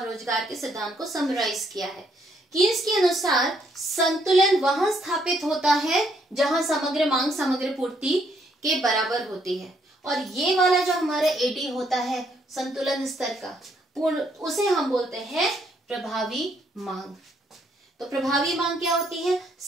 रोजगार के सिद्धांत को समराइज किया है। कीन्स के अनुसार संतुलन वहां स्थापित होता है जहां समग्र मांग समग्र पूर्ति के बराबर होती है, और ये वाला जो हमारा एडी होता है संतुलन स्तर का पूर्ण, उसे हम बोलते हैं प्रभावी मांग। तो प्रभावी मांग क्या होती है,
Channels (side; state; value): both; normal; correlation 0.71